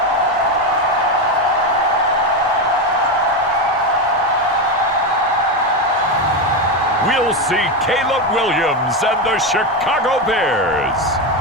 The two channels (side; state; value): both; normal; correlation 0.13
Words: We'll see Caleb Williams and the Chicago Bears